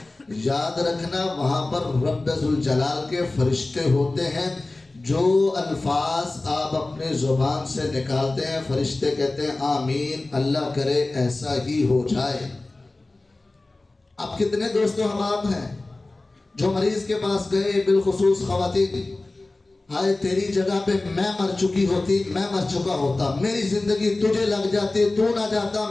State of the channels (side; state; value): right; quieter; 3.0 dB